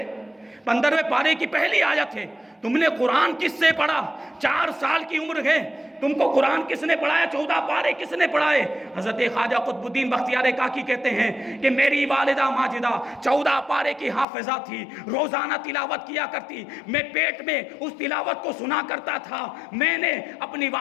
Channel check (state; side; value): drops out; right; at 14.2 s